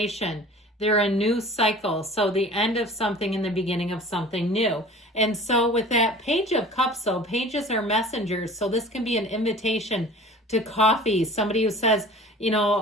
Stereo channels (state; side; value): normal; both; correlation 0.43